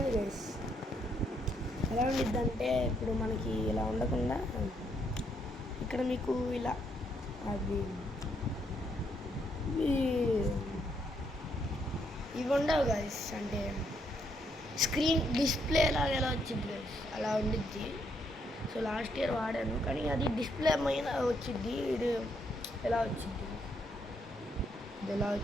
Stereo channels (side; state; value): both; normal; correlation 0.75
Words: గైస్. ఎలా ఉండిద్దంటే ఇప్పుడు మనకి ఇలా ఉండకుండా ఇక్కడ మీకు ఇలా అది ఇవి ఉండవు గైస్. అంటే స్క్రీన్ డిస్ప్లే లాగా ఎలా వచ్చింది గైస్ అలా ఉండిద్ది. సో లాస్ట్ ఇయర్ వాడాను కానీ అది డిస్ప్లే మీద వచ్చింది. ఇది ఎలా వచ్చింది, ఇది ఎలా